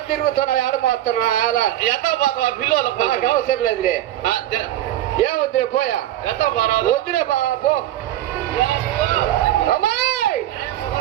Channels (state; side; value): quieter; left; 13.4 dB